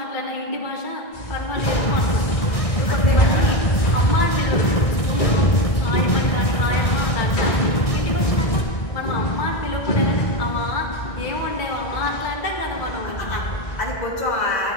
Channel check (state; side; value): late; right; 1.6 ms